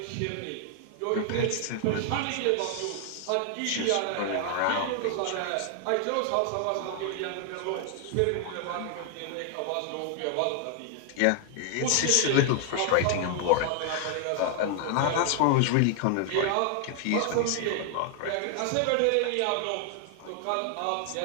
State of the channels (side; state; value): both; different; correlation 0.00